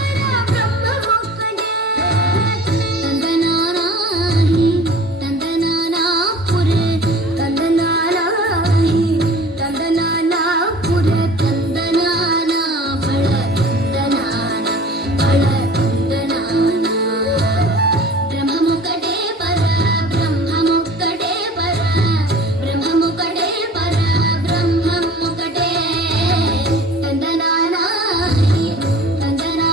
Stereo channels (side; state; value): both; normal; correlation 0.44